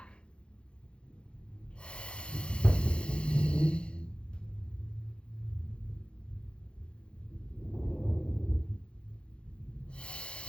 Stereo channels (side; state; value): right; late; 0.056 ms